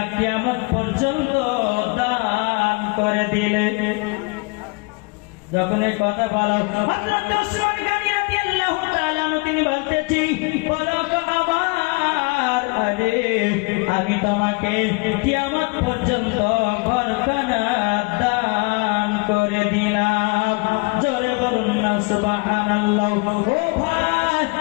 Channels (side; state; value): right; quieter; 29.2 dB